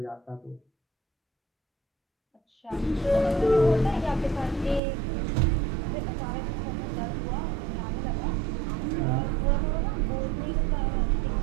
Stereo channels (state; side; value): drops out; left; at 4.8 s